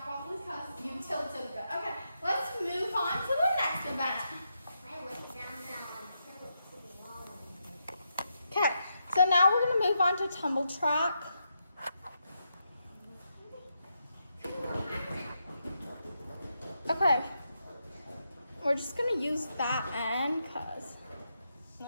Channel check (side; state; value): both; inverted; correlation -0.83